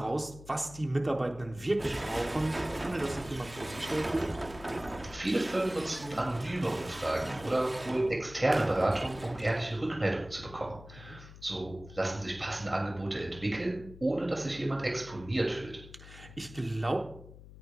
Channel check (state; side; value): noise; left; hum, 17 dB below the sound